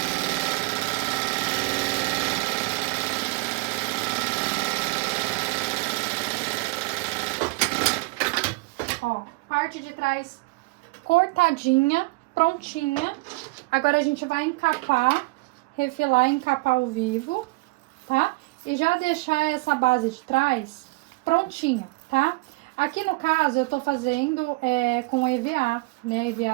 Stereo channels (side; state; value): left; quieter; 24.9 dB